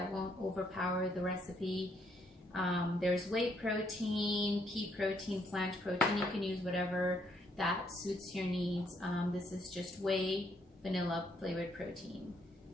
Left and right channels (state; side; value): normal; both; correlation 0.72